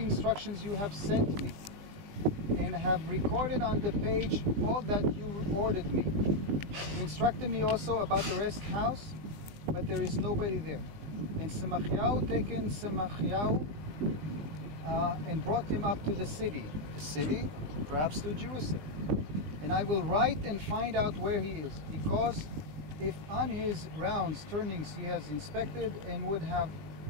you have sent me, and have recorded on the page all that you ordered me. You instructed me also about the rest house, but there is nobody there. And Semachiahu taken Semachiahu and brought him up to the city, perhaps to Jerusalem. And I will write and find out where he is, because if on his rounds turnings he has inspected and would have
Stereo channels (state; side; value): late; left; 20 ms